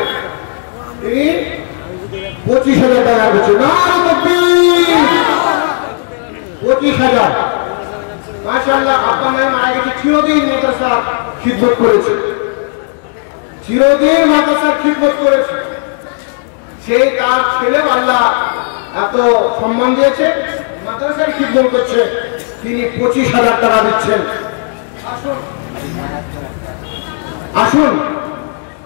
তিনি 25,000 টাকা করছেন। না 25,000 মাশাআল্লাহ। আব্বা নাই মারা গেছে, চিরদিন মাদ্রাসার খিদমত করেছে, চিরদিন মাদ্রাসার খিদমত করেছে। সেই তার ছেলেও আল্লাহ এত সম্মান দিয়েছে, মাদ্রাসায় খিদমত করছে, তিনি 25,000 টাকা দিচ্ছেন। আসুন আসুন।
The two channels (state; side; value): silent; right; 62 dB below the other